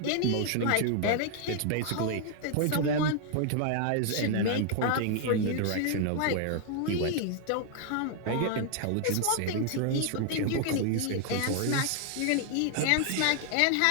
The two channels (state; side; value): different; both; correlation 0.00